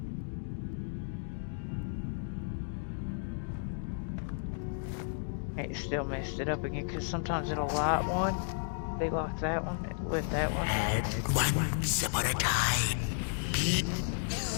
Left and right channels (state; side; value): silent; right; digital silence